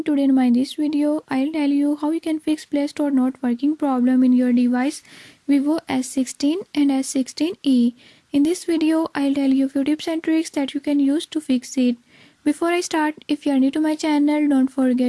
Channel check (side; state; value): both; identical; correlation 1.00